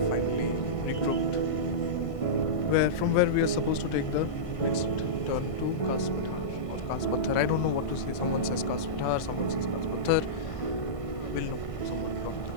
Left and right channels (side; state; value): right; late; 1.5 ms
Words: finally regrouped, where we are supposed to take the next turn to Kaspathar or Kaspathar. I don't know what to say. Someone says Kaspathar, someone says Kaspathar. We'll know. Someone drop in the